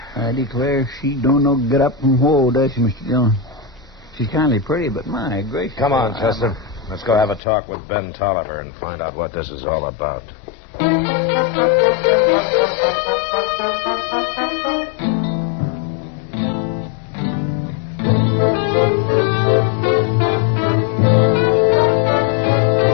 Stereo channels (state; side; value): drops out; right; at 7.4 s